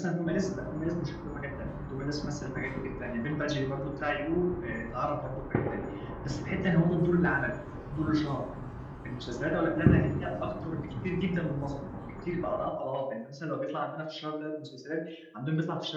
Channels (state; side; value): identical; both; correlation 1.00